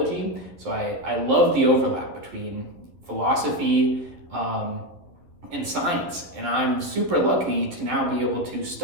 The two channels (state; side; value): late; left; 11 ms